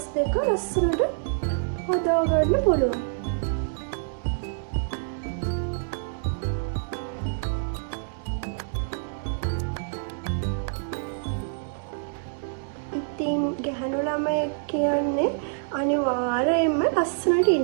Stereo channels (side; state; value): left; silent; 60 dB below the other